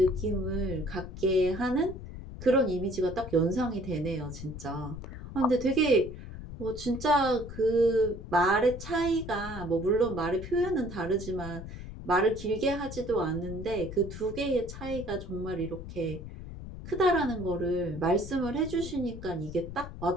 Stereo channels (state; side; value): noise; left; rumble, 11 dB below the sound